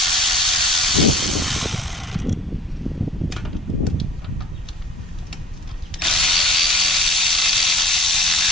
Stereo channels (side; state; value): both; normal; correlation 0.46